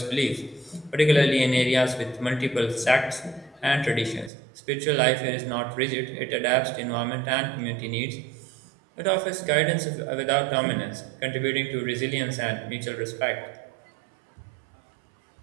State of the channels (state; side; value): drops out; left; at 4.3 s